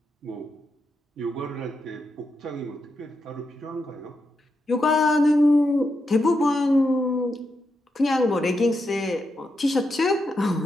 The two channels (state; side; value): normal; both; correlation 0.84